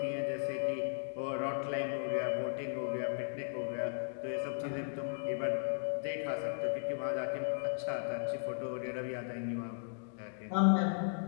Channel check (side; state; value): right; silent; digital silence